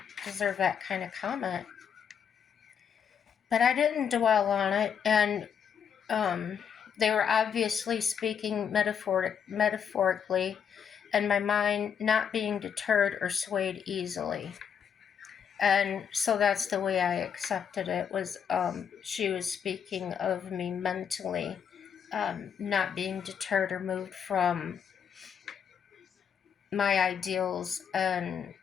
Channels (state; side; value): quieter; right; 7.7 dB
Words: deserve that kind of comment? But I didn't dwell on it, and they were obviously speaking metaphorically, and my mind not being deterred or swayed easily. And so that's the way I accepted it, was she was speaking of me mentally, not being deterred or moved from my ideals and